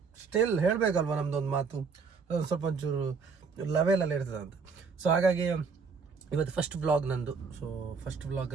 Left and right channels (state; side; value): quieter; left; 5.2 dB